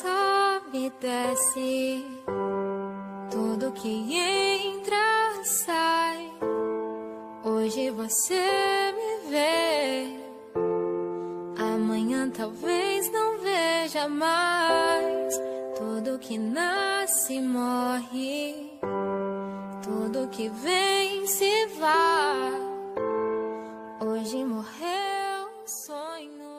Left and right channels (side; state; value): both; identical; correlation 1.00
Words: e desce, tudo que entra sai. Hoje você me vê, amanhã talvez não veja mais. Tudo que nasce morre, tudo que vem se vai. Hoje morreu.